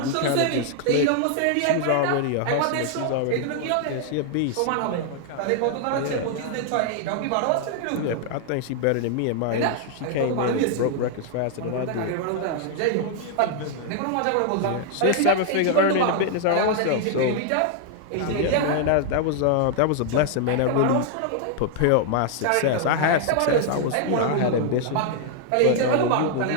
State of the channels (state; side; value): different; both; correlation 0.00